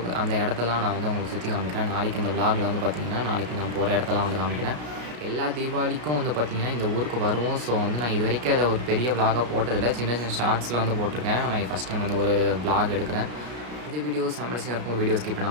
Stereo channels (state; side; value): late; left; 33 ms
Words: அந்த இடத்தெல்லாம் நான் வந்து உங்களுக்கு சுற்றி காமிக்கிறேன். நாளைக்கு இந்த விலாகில் வந்து பார்த்திங்கன்னா நாளைக்கு நான் போகிற இடத்தெல்லாம் வந்து காமிக்கிறேன். எல்லா தீபாவளிக்கும் வந்து பார்த்திங்கன்னா இந்த ஊருக்கு வருவோம். ஸோ வந்து நான் இது வரைக்கும் அதை ஒரு பெரிய விலாகாக போட்டதில்லை. சின்ன சின்ன ஷார்ட்ஸில் வந்து போட்டிருக்கேன். நான் ஃபஸ்ட் டைம் வந்து ஒரு விலாக் எடுக்கிறேன். இந்த வீடியோஸ் சம்மர்ஸியாக இருக்கும். வீடியோ ஸ்கிப்